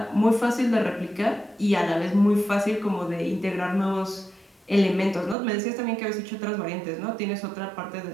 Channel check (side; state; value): left; drops out; at 5.4 s